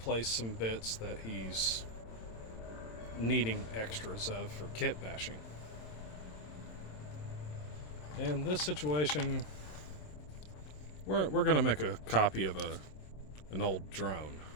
some bits that he's needing extras of for kit bashing. In this situation, we're going to make a copy of an old drone.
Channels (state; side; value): late; right; 27 ms